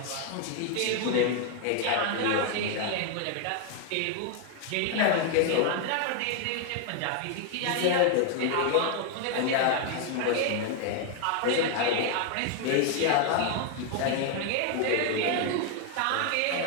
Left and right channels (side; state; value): both; different; correlation 0.01